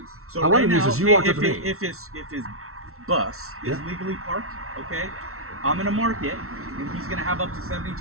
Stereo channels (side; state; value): left; late; 0.63 ms